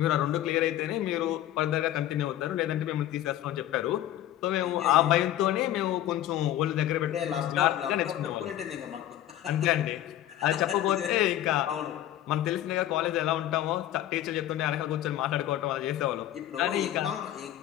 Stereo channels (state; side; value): quieter; right; 12.8 dB